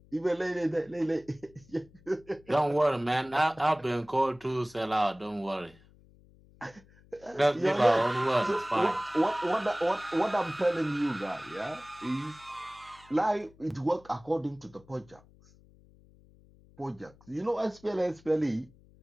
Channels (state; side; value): noise; left; hum, 27 dB below the sound